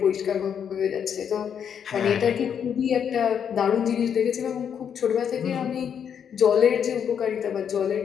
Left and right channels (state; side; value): quieter; right; 8.0 dB